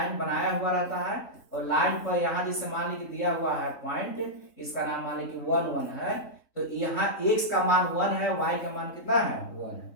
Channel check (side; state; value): right; late; 3.6 ms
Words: बनाया हुआ रहता है, और लाइन पर यहाँ जैसे मान लीजिए दिया हुआ है पॉइंट, इसका नाम मान लीजिए 1 1 है, तो यहाँ x का मान 1 है, y का मान कितना है 1